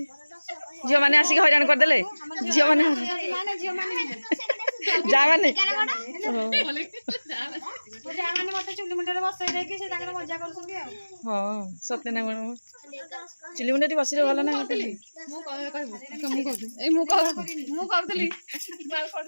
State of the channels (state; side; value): inverted; both; correlation -1.00